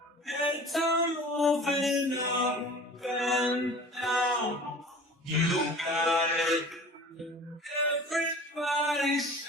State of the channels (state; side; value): normal; both; correlation 0.42